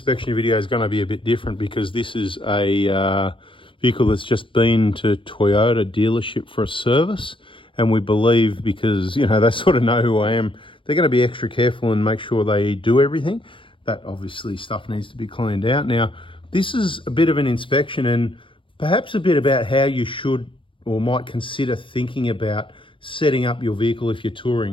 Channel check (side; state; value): right; late; 0.25 ms